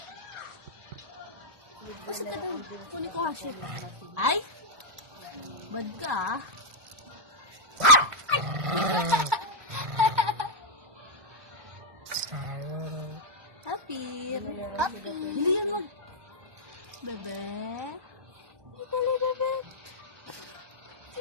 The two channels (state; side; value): late; left; 1.4 ms